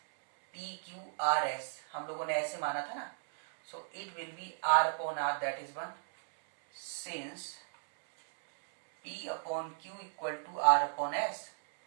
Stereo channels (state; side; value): silent; left; digital silence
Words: PQRS, हम लोगों ने ऐसे माना था ना, so it will be R upon R, that is 1. Since P upon Q equal to R upon S,